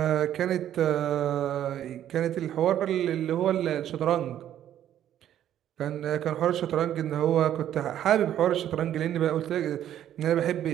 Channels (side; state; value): left; quieter; 11.1 dB